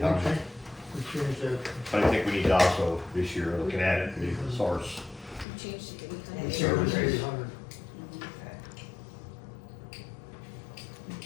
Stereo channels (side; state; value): right; drops out; at 5.5 s